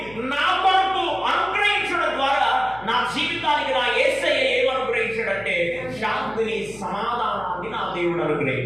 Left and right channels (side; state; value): left; noise; hum, 21 dB below the sound